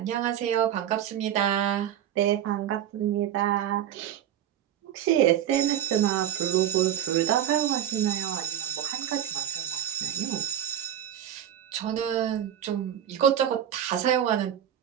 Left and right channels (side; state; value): left; quieter; 10.5 dB